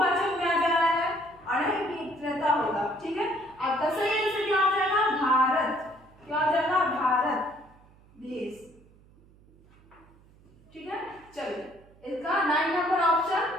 में आ जा रहा है, और नहीं मित्रता होगा। ठीक है, आपका सही आंसर क्या हो जाएगा? भारत। क्या हो जाएगा? भारत देश। ठीक है, चलिए इसका 9 नंबर ऑप्शन,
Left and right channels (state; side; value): noise; right; hum, 27 dB below the sound